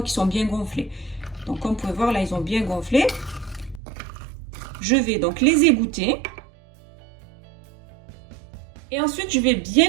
qu'ils sont bien gonflés. Donc comme vous pouvez voir là ils ont bien gonflé. Je vais donc les égoutter. Et ensuite je vais bien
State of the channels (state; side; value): drops out; left; at 3.8 s